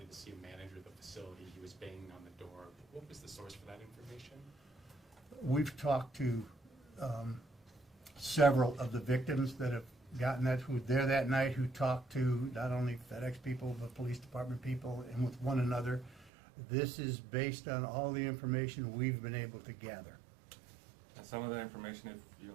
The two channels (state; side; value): drops out; left; at 16.3 s